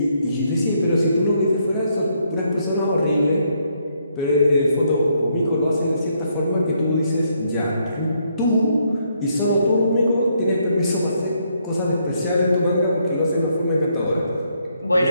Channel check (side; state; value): both; inverted; correlation -0.74